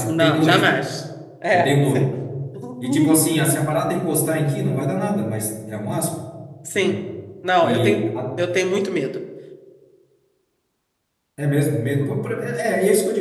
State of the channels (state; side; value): identical; both; correlation 1.00